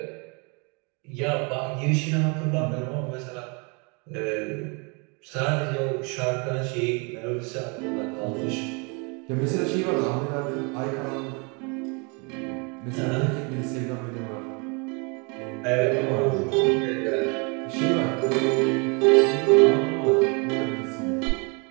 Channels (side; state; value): left; quieter; 32.6 dB